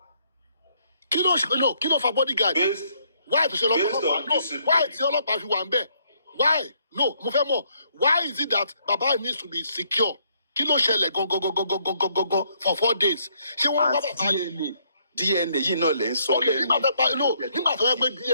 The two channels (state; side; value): inverted; both; correlation -0.70